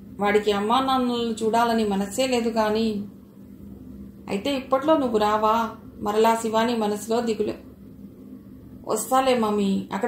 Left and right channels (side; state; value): both; identical; correlation 1.00